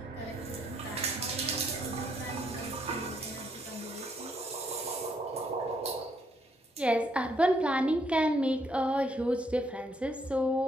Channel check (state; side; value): normal; both; correlation 0.72